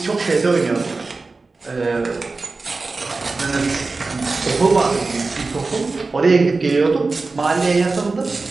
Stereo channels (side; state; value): left; quieter; 3.8 dB